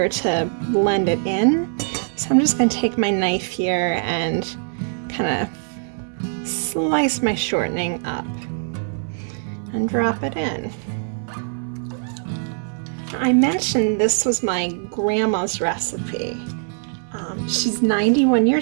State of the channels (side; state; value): left; silent; digital silence